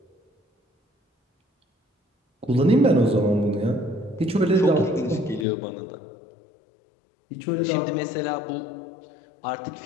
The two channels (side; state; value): right; drops out; at 5.5 s